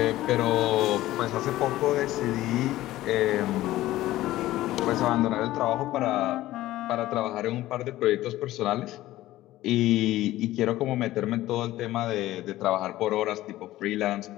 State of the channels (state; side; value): quieter; right; 15.8 dB